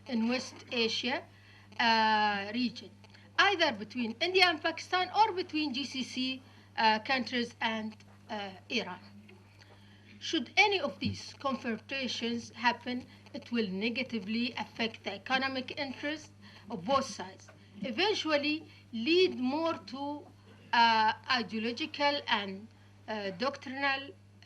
in West Asia region, either between India and Pakistan or between GCC countries and Iran. Should any of these confrontations happen, it will negatively affect the economic interests of both sides, eventually lead more to ideological and doctrinal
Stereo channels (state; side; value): identical; both; correlation 1.00